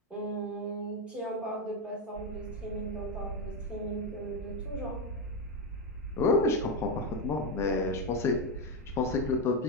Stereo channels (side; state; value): both; normal; correlation 0.08